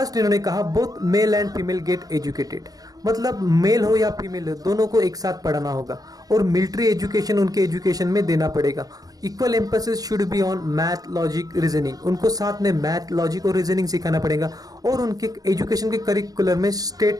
इन्होंने कहा both male and female get educated, मतलब मेल हो या फीमेल हो दोनों को एक साथ पढ़ाना होगा, और मिलिट्री एजुकेशन उनके एजुकेशन में देना पड़ेगा। Equal emphasis should be on math, logic, reasoning, उनको साथ में मैथ, लॉजिक और रीजनिंग सिखाना पड़ेगा, और उनके एजुकेशन के करिकुलर में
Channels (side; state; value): left; late; 0.18 ms